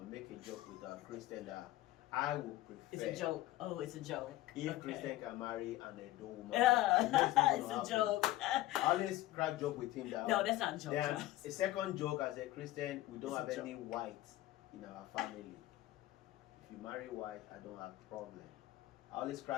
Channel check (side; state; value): right; quieter; 15.9 dB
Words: make a joke with a Christian that I would prefer. It's a joke. Oh, it's a joke. If Okay. Christian can marry an Edo woman, It's a joke. I always crack joke with him that. No, that's not a joke. Then Charles. a second joke as a Christian, we don't It's a have any joke. white in our family. If you marry white, I don't have problem. I always